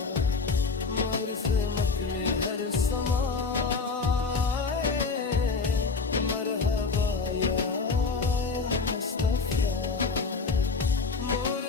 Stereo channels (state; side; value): quieter; right; 4.5 dB